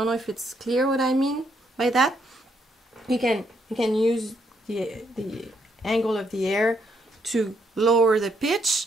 know if it's clear what I mean by that. You can use the angle of the air to lower the pitch,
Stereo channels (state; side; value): normal; both; correlation 0.74